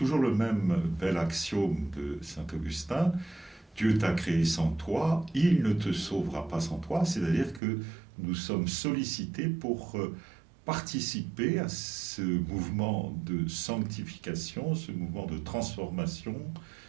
le même bel axiome de saint Augustin. Dieu t'a créé sans toi, il ne te sauvera pas sans toi, c'est-à-dire que nous sommes sollicités pour participer à ce mouvement de sanctification, ce mouvement de transformation,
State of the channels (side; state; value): left; drops out; at 7.6 s